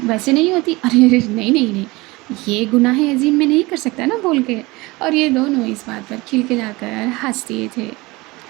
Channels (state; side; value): quieter; left; 22.5 dB